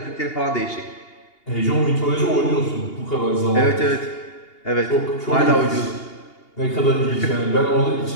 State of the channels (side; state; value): right; late; 2.8 ms